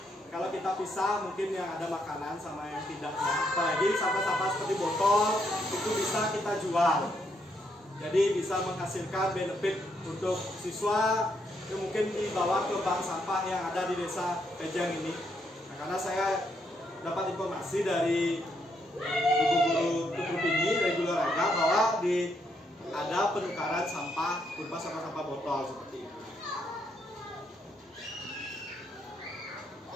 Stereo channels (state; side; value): normal; both; correlation 0.76